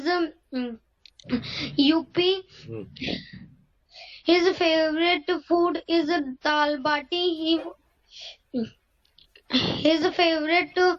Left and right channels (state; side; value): identical; both; correlation 1.00